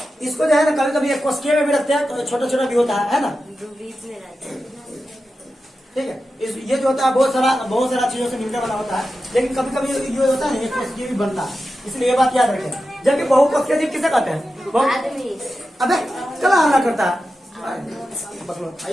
इसको जो है ना कभी कभी एक कोशिकीय में भी रखते हैं, तो छोटा छोटा भी होता है ना, जो बीच में रहते हैं। ठीक है। ये जो होता है बहुत सारा चीजों से मिलकर बना होता है, लेकिन कभी कभी ये होता है ना एक कोशिकीय भी बनता है, इसलिए ये बात याद रखें। जबकि बहुकोशिकीय जीव किसे कहते हैं, आदमी। अबे चला हमला करता है, पकड़ो,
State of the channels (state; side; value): normal; both; correlation 0.91